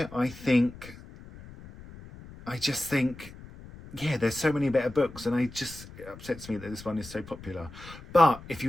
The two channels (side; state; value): left; noise; rumble, 17 dB below the sound